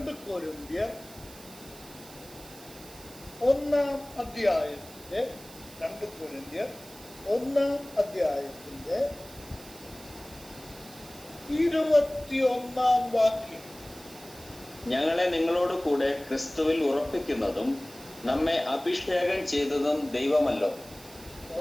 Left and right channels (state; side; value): noise; right; hiss, 19 dB below the sound